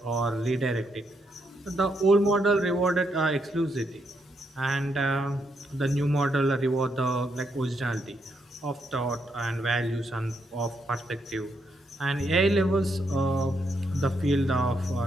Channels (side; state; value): both; normal; correlation 0.78